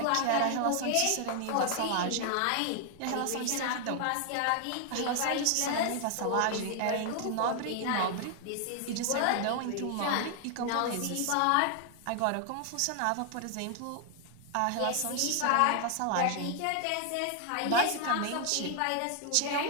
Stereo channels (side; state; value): both; different; correlation 0.00